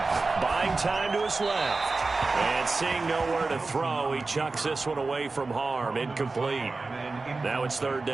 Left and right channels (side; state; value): left; quieter; 3.7 dB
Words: Buying time to his left. And seeing nowhere to throw, he chucks this one away from harm. Incomplete. Now it's 3rd